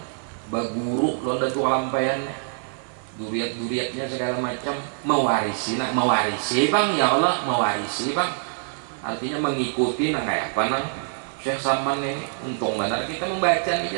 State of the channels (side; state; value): left; silent; 62 dB below the other